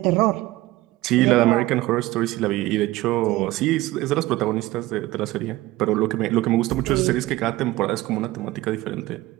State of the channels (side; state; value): left; quieter; 17.9 dB